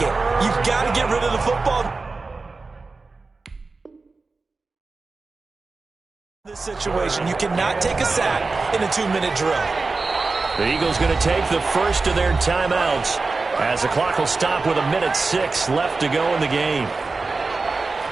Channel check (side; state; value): left; quieter; 3.9 dB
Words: you've got to get rid of the football. This situation, you cannot take a sack in a 2-minute drill. The Eagles going to take the first of their timeouts, as the clock will stop with 1:06 left to go in the game.